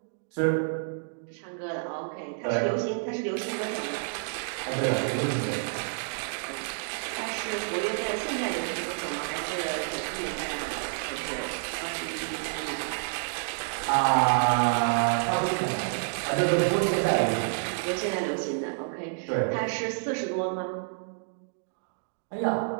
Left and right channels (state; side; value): silent; left; digital silence